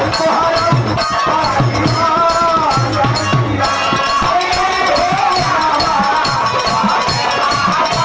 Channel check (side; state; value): both; identical; correlation 1.00